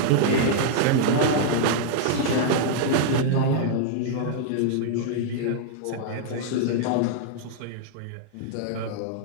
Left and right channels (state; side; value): different; both; correlation -0.01